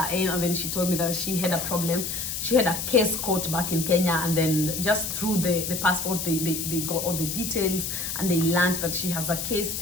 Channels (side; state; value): left; noise; hiss, 4 dB below the sound